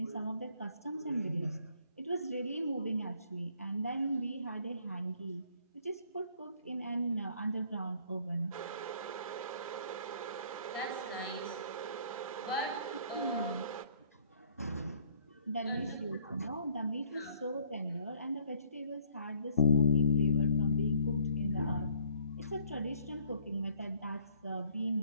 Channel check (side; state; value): both; inverted; correlation -0.60